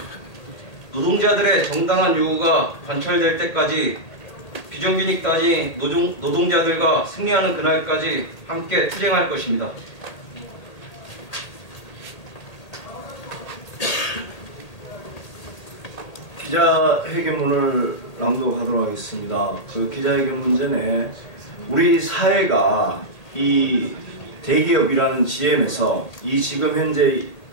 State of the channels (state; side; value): late; right; 1.8 ms